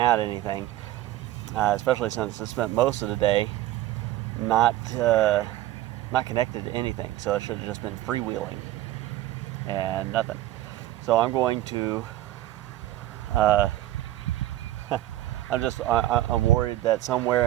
anything. Especially since it spent most of the day not connected to anything, so it should have just been freewheeling and nothing. So I'm going to. I'm worried that somewhere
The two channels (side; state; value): left; quieter; 14.6 dB